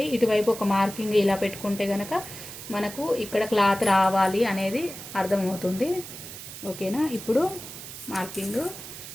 ఇటువైపు ఒక మార్కింగ్ ఇలా పెట్టుకుంటే కనుక మనకు ఇక్కడ క్లాత్ రావాలి అనేది అర్థమవుతుంది. ఓకేనా. ఇప్పుడు మార్కింగ్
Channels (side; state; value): right; noise; hiss, 12 dB below the sound